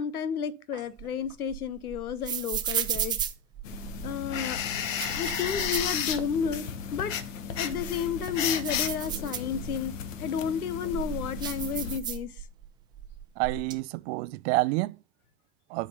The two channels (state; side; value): normal; both; correlation 0.12